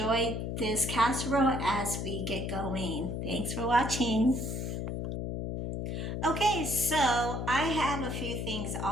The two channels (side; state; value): left; noise; hum, 3 dB below the sound